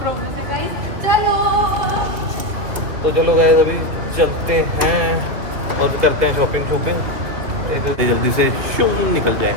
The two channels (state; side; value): late; left; 3.1 ms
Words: है गाइस। चलो तो चलो गाइस अभी चलते हैं और करते हैं शॉपिंग जल्दी से शू निकल जाए।